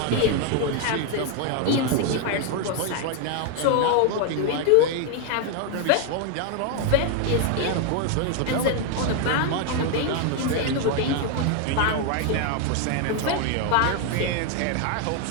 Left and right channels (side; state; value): both; different; correlation 0.01